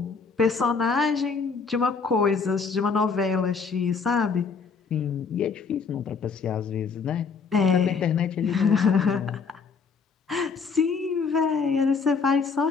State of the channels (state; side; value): quieter; right; 5.2 dB